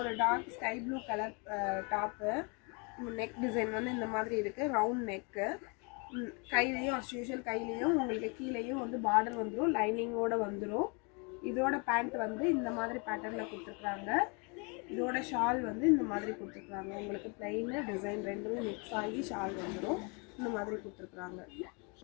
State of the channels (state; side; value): quieter; right; 32.9 dB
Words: dark sky blue colour top. Neck design வந்து இந்த மாதிரி இருக்குது. Round neck. கையிலையும் அஸ் யூஷுவல் கையிலையும் உங்களுக்கு கீழேயும் வந்து பார்டர் வந்துடும். லைனிங்கோடு வந்துடும். இதோட பேண்ட் வந்து இந்த மாதிரி பேட்டர்னில் கொடுத்துருக்குறாங்க. இதோட ஷால் வந்து இந்த மாதிரி கொடுத்துருக்குறாங்க. உங்களுக்கு பிளைன் டிசைன் ரெண்டுமே மிக்ஸ் ஆகி ஷால் வந்துடும். இந்த மாதிரி கொடுத்துருக்குறாங்க.